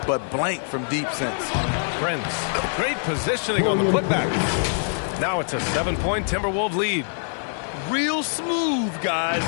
but blank from deep since. Prince. Great positioning on the putback. Now it's a 7-point Timberwolves lead. Real smooth, guys.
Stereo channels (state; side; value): silent; right; digital silence